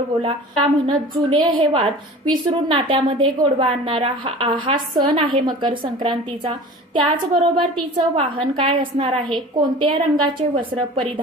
का म्हणत जुने हे वाद विसरून नात्यामध्ये गोडवा आणणारा हा सण आहे मकर संक्रांतीचा. त्याचबरोबर तिचं वाहन काय असणार आहे, कोणत्या रंगाचे वस्त्र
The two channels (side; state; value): both; normal; correlation 0.40